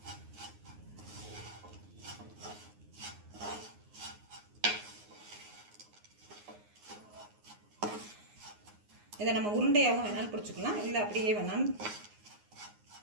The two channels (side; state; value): left; late; 9.6 ms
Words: இதை நம்ம உருண்டையாகவும் வேணாலும் பிடிச்சிக்கலாம், இல்லை அப்படியே வேணாலும்.